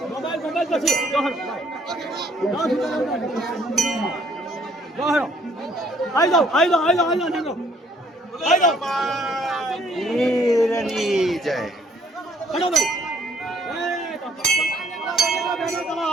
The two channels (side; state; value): both; normal; correlation 0.63